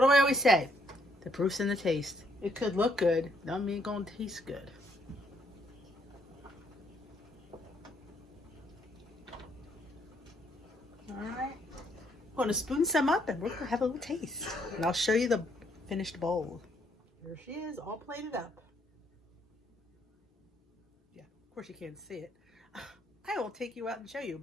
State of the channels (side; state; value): both; normal; correlation 0.70